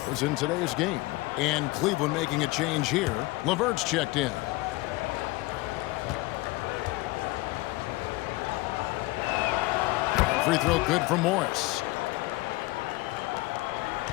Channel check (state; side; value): quieter; right; 21.2 dB